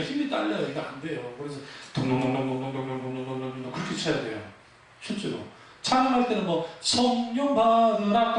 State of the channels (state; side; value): identical; both; correlation 1.00